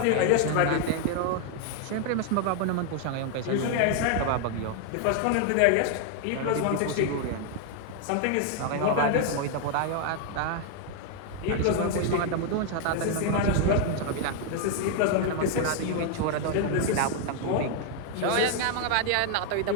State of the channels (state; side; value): different; both; correlation 0.00